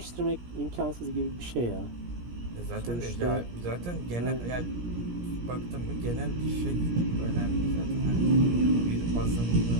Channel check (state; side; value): late; left; 17 ms